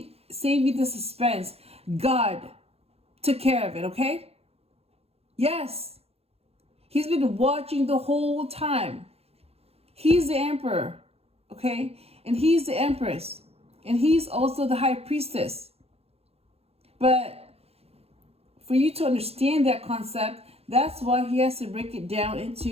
save you the suspense. God took care of it, okay? Yes. He's been watching the whole time. He's the emperor, okay? And he's the empress. And he's also the high priestess. But for you to understand that concept, that's why he has to break it down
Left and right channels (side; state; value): left; late; 0.29 ms